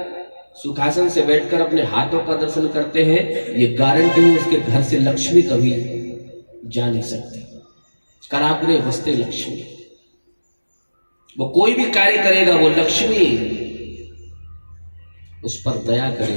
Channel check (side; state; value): both; inverted; correlation -1.00